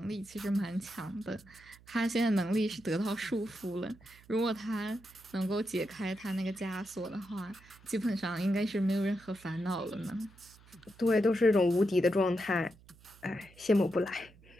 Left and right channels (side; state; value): right; noise; hum, 25 dB below the sound